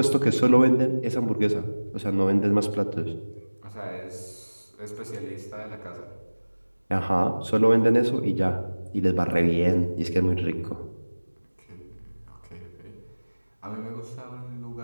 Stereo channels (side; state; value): both; inverted; correlation -1.00